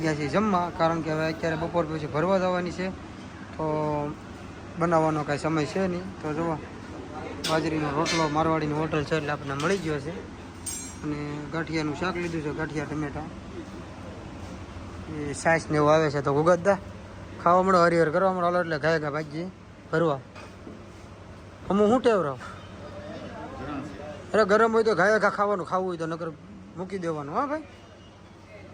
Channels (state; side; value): identical; both; correlation 1.00